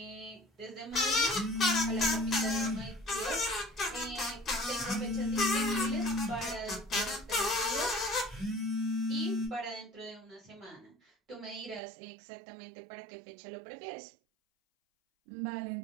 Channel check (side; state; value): left; drops out; at 11.8 s